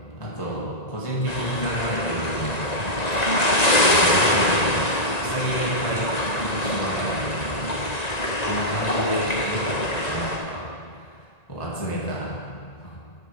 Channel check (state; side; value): late; right; 1.9 ms